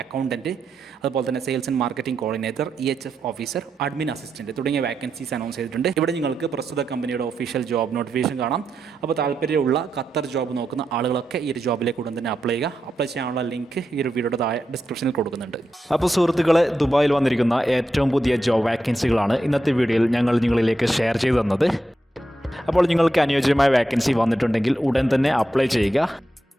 accountant, അതുപോലെ തന്നെ sales and marketing coordinator, EHF officer, admin assistant തുടങ്ങിയ വാക്കൻസീസ് അനൗൺസ് ചെയ്തിട്ടുണ്ട്. ഇവിടെ നിങ്ങൾക്ക് പ്രസ്തുത കമ്പനിയുടെ ഒഫീഷ്യൽ ജോബ് നോട്ടിഫിക്കേഷൻ കാണാം. അപ്പോൾ താല്പര്യമുള്ള ഖത്തർ ജോബ് നോക്കുന്ന ആളുകളൊക്കെ ഈ ഒരു ജോബിലേക്ക് ഉടൻ തന്നെ അപ്ലൈ ചെയ്യുക. അപ്ലൈ ചെയ്യാനുള്ള ലിങ്ക് ഈ ഒരു വീഡിയോയുടെ താഴെ ഡിസ്ക്രിപ്ഷനിൽ കൊടുക്കുന്നുണ്ട്. അപ്പോൾ സുഹൃത്തുക്കളെ, ദുബായിൽ വന്നിരിക്കുന്ന ഏറ്റവും പുതിയ ജോബ് വാക്കൻസികളാണ് ഇന്നത്തെ വീഡിയോയിൽ ഞങ്ങൾ നിങ്ങളിലേക്ക് ഷെയർ ചെയ്തു തന്നത്. അപ്പോൾ നിങ്ങൾക്ക് അനുയോജ്യമായ വാക്കൻസി വന്നിട്ടുണ്ടെങ്കിൽ ഉടൻ തന്നെ അപ്ലൈ ചെയ്യുക.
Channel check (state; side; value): normal; both; correlation 0.86